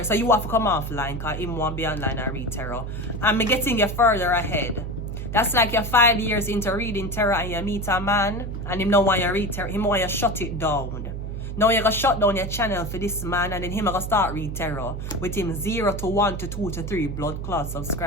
to come offline because him won't be online and read tarot. And me getting you further ahead. That's like you're 5 years into reading tarot and you meet a man and him don't want you to read tarot. Him want you to shut it down. Now you're going to shut down your channel for this man and then him going to start read tarot with him 0 to 1 to 2 to 3 blood clot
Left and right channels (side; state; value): right; noise; hum, 6 dB below the sound